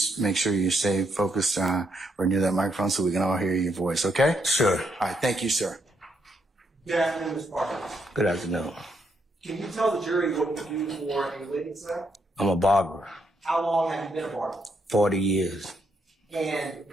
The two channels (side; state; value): both; normal; correlation 0.77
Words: make sure you stay focused or near that microphone so we can all hear your voice, okay? Sure. All right, thank you, sir. Good afternoon, Mr. Parker. Good afternoon. Can you tell the jury what you do for a living, sir? I'm a barber. How long have you been a barber? 40 years. And